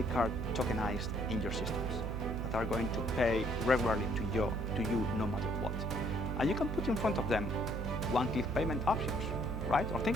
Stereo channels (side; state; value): right; noise; hum, 3 dB below the sound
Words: card tokenized in your systems that are going to pay regularly to you no matter what. And you can put in front of them one-click payment options, right? Or